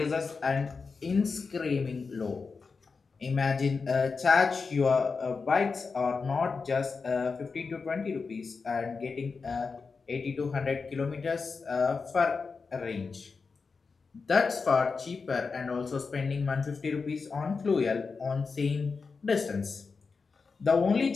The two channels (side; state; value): right; quieter; 4.8 dB